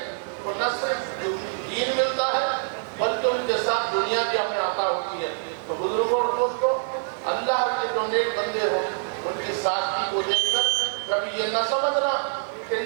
تو نہ صرف دین ملتا ہے بلکہ ان کے ساتھ دنیا بھی ہمیں عطا ہوتی ہے۔ تو بزرگوں اور دوستوں، اللہ کے جو نیک بندے ہوں ان کی سادگی کو دیکھ کر کبھی یہ نہ سمجھنا کہ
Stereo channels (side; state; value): left; silent; 62 dB below the other